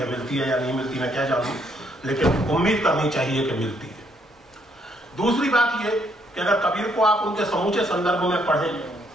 मिलती है या नहीं मिलती मैं क्या जानूं, लेकिन उम्मीद करनी चाहिए कि मिलती है। दूसरी बात यह कि अगर कबीर को आप उनके समूचे संदर्भ में पढ़ें,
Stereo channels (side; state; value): both; normal; correlation 0.71